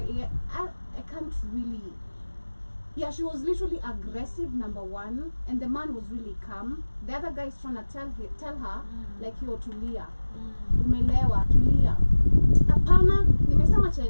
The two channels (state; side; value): inverted; both; correlation -1.00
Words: Yeah, I can't really. Yeah, she was literally aggressive, number one, and the man was really calm. The other guy is trying to tell her, like, yo, tulia. Umelewa, tulia. Apana, nimesema cha